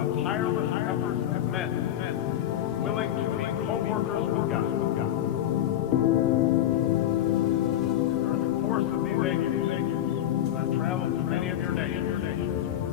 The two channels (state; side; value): quieter; right; 11.8 dB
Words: the tireless efforts of men willing to be co-workers with God. course of these 8 years, as I've traveled to many of your nations,